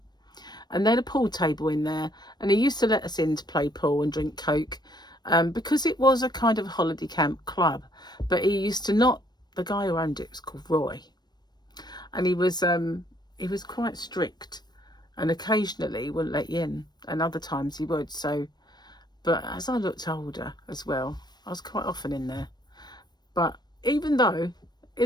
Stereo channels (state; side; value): late; right; 0.20 ms